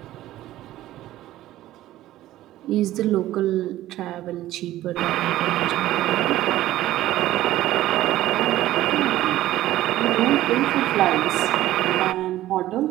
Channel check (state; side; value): quieter; left; 14.8 dB